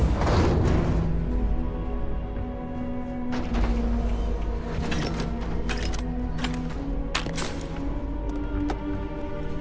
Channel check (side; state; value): both; identical; correlation 1.00